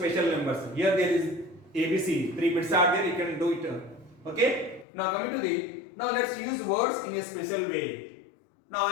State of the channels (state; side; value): drops out; right; at 4.9 s